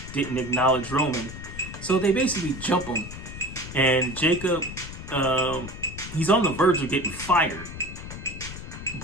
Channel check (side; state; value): left; noise; rumble, 11 dB below the sound